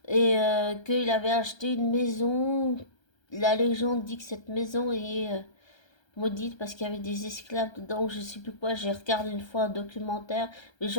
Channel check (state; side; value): late; right; 1.3 ms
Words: Et qu'il avait acheté une maison. La légende dit que cette maison est maudite parce qu'il y avait des esclaves dedans, je sais plus quoi. J'ai regardé une fois un documentaire, mais